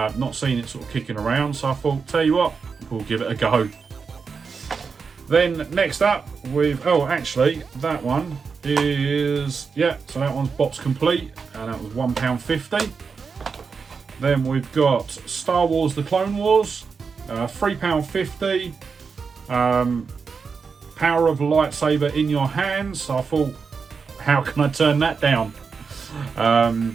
seen it sort of kicking around. So I thought, tell you what, we'll give it a go. Then next up, actually, that one is, yeah, so that one's box complete, and that was £1.50. Then we've got Star Wars: The Clone Wars, £3.50. Power of a lightsaber in your hands. So I thought, how can I turn that down?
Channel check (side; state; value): left; quieter; 5.4 dB